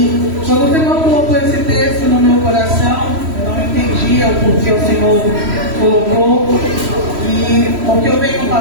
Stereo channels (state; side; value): late; left; 3.1 ms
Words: quando o Senhor colocou esse texto no meu coração, eu não entendia o porquê o Senhor colocou. E o que eu venho